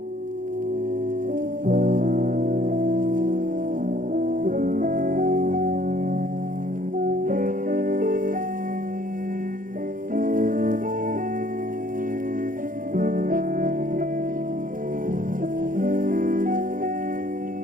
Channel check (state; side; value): late; left; 0.40 ms